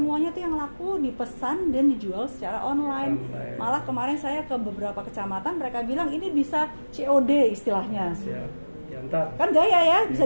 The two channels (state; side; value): inverted; both; correlation -1.00